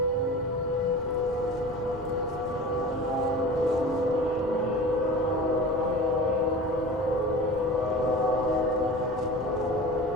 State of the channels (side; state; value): both; normal; correlation 0.36